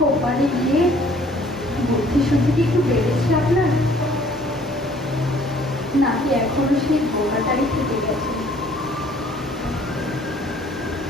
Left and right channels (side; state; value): both; normal; correlation 0.57